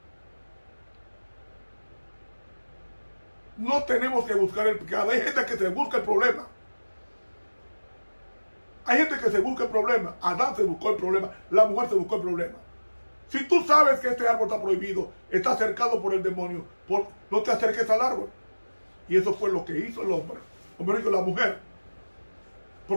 No tenemos que buscar el pecado. Hay gente que se busca el problema. Hay gente que se busca el problema. Adán se buscó el problema. La mujer se buscó el problema. Si tú sabes que este árbol está prohibido, está cercado por el demonio, no te acerques al árbol. Y eso fue lo que hizo el hombre. O mejor dicho, la mujer.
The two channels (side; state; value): both; inverted; correlation -1.00